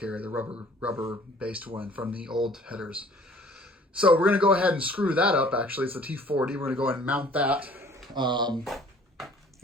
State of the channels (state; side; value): normal; both; correlation 0.53